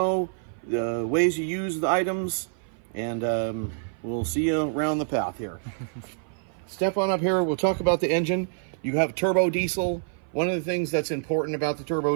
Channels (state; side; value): silent; left; 56 dB below the other